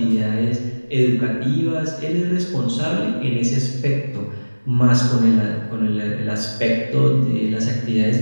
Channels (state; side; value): inverted; both; correlation -1.00